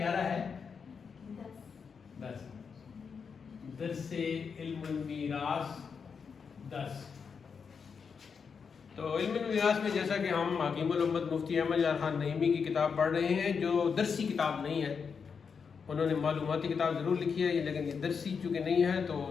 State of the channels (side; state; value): right; quieter; 6.0 dB